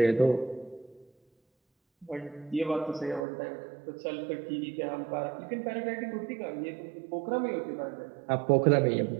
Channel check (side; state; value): left; drops out; at 3.2 s